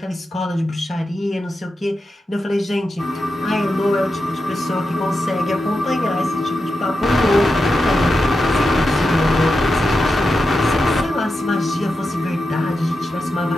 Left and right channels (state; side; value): normal; both; correlation 0.89